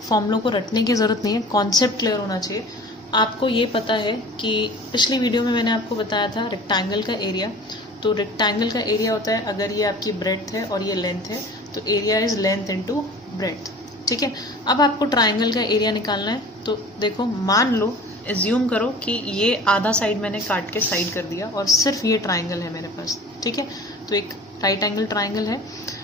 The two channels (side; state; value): both; normal; correlation 0.42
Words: फॉर्मूलों को रटने की ज़रूरत नहीं है, कॉन्सेप्ट क्लियर होना चाहिए। आपको ये पता है कि पिछली वीडियो में मैंने आपको बताया था रेक्टेंगल का एरिया। तो रेक्टेंगल का एरिया होता है, अगर ये आपकी ब्रेड्थ है और ये लेंथ है तो area is length into breadth. ठीक है, अब आपको ट्राइंगल का एरिया निकालना है। तो देखो, मान लो, एज्यूम करो कि ये आधा साइड मैंने काट के साइड कर दिया और सिर्फ ये ट्राइंगल है मेरे पास। ठीक है, तो एक राइट एंगल ट्राइंगल है।